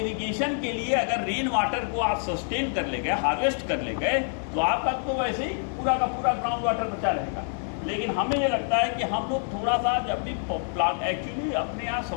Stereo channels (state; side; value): silent; right; 60 dB below the other